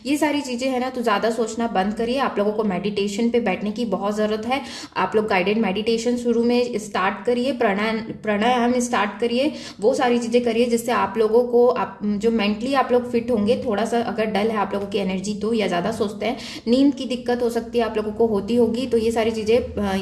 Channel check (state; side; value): identical; both; correlation 1.00